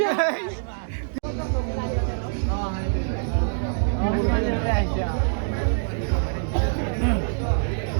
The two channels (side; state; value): left; silent; digital silence